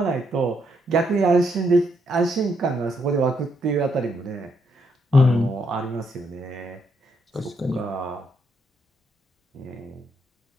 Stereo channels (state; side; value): normal; both; correlation 0.76